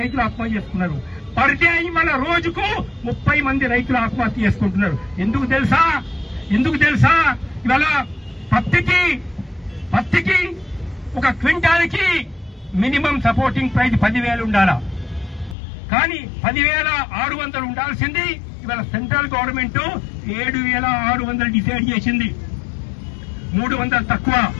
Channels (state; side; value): drops out; right; at 15.6 s